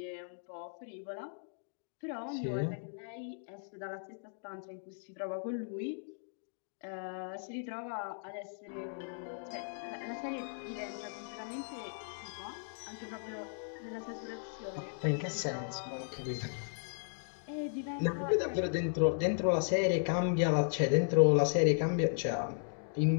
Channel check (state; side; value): silent; right; digital silence